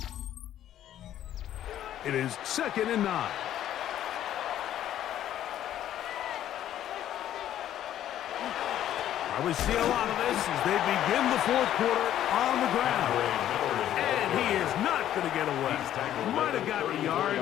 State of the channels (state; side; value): quieter; right; 11.7 dB